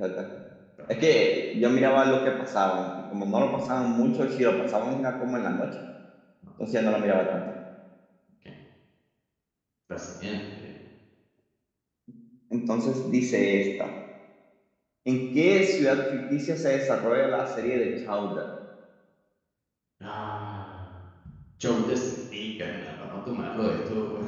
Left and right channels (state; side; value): identical; both; correlation 1.00